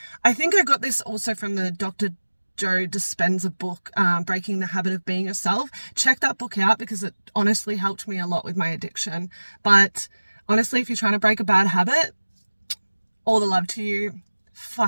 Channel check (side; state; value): both; inverted; correlation -1.00